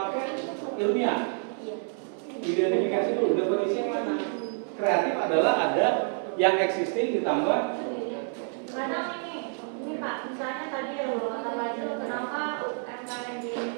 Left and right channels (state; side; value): silent; left; 59 dB below the other